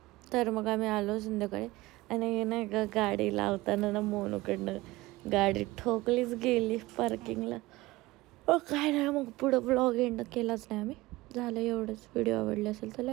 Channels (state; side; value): quieter; left; 19.7 dB